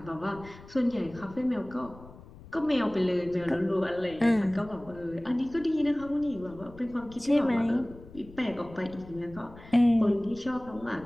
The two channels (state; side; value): noise; left; rumble, 19 dB below the sound